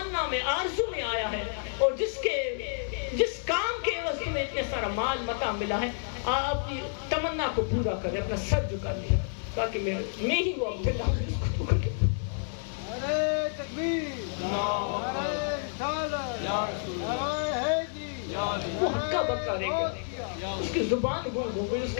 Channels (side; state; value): right; silent; digital silence